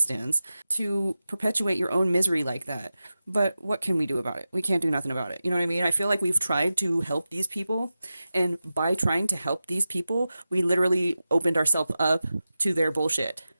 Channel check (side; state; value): both; inverted; correlation -0.93